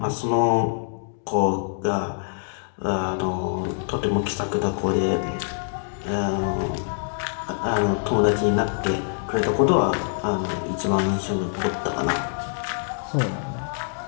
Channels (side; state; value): right; silent; digital silence